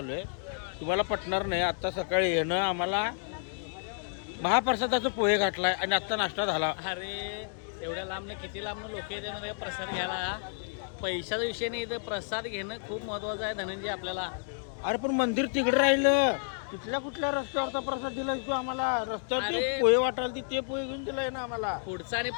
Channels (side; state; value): right; silent; digital silence